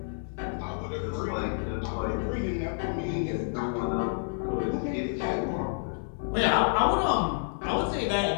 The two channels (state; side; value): silent; right; 58 dB below the other